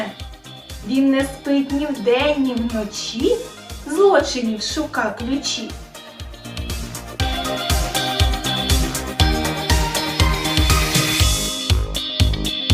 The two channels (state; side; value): identical; both; correlation 1.00